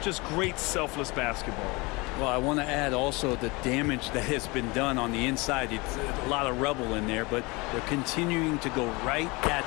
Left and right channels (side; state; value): right; quieter; 25.5 dB